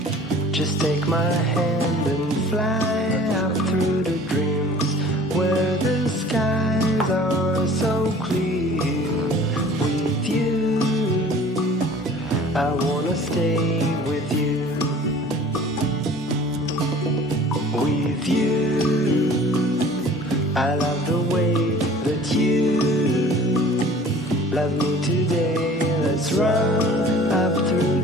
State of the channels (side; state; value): both; normal; correlation 0.47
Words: Just take my hand and fly up through the dreams where the skies are so clear. With you, I wanna stay with you. With you, I love the way that you love me today. Let's run up through